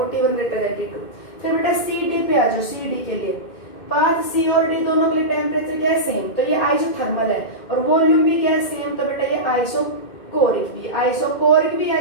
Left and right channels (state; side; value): late; right; 2.1 ms